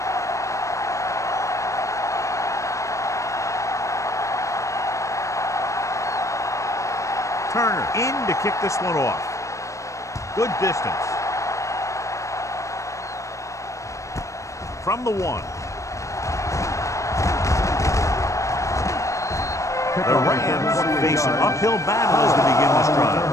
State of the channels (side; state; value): right; late; 0.15 ms